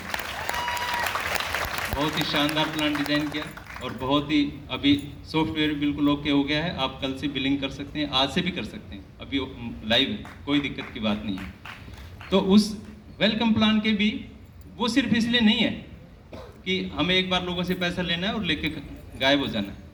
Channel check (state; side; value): identical; both; correlation 1.00